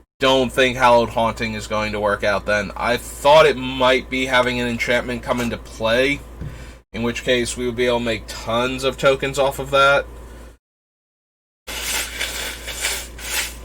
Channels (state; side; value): identical; both; correlation 1.00